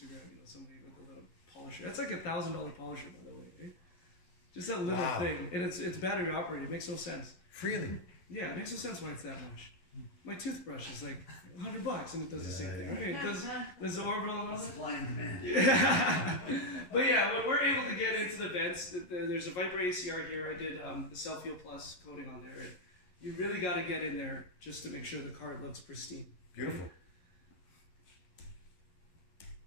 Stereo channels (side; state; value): right; late; 11 ms